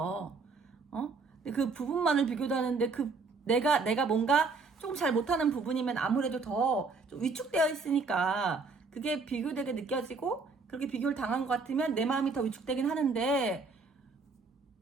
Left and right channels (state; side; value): quieter; left; 4.2 dB